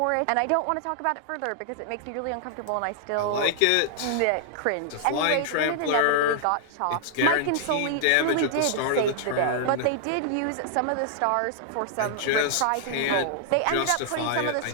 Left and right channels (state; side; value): different; both; correlation -0.01